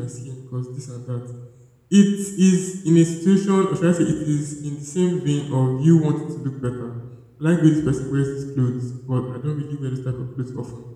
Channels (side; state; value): both; identical; correlation 1.00